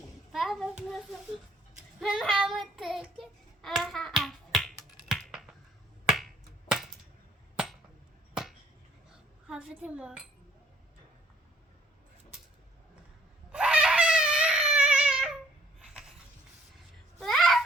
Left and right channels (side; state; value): both; normal; correlation 0.61